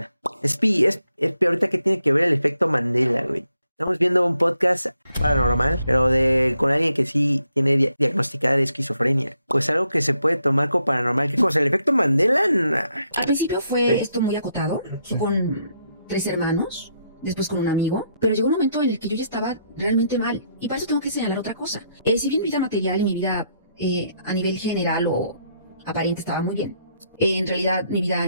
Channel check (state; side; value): inverted; both; correlation -0.76